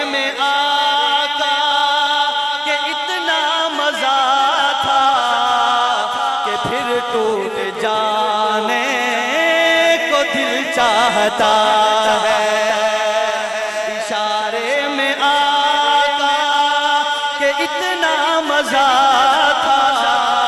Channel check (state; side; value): identical; both; correlation 1.00